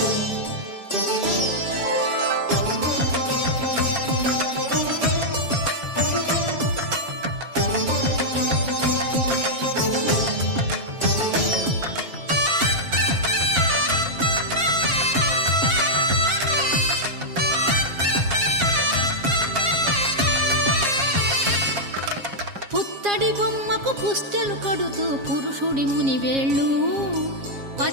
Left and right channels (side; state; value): left; late; 7.4 ms